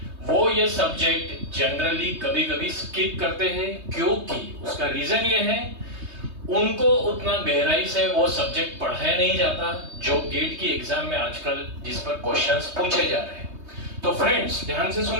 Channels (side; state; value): left; late; 3.2 ms